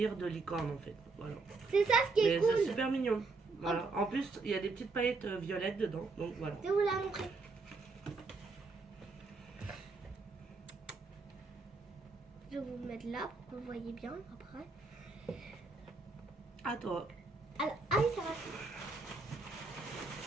de licorne en fait. Voilà. c'est ça ce qui est Mais c'est cool. super mignon. Voilà. En plus, il y a des petites paillettes violettes dedans. Donc voilà. Je vais vous la montrer. Je vais vous mettre mettre là pour que vous voyez bien après. À toi. Alors, ah oui, ça va.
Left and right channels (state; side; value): quieter; left; 3.9 dB